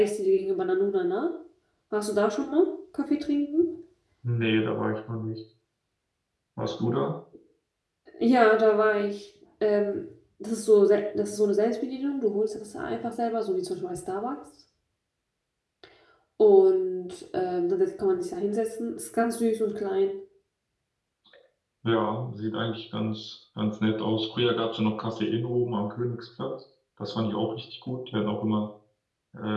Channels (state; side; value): identical; both; correlation 1.00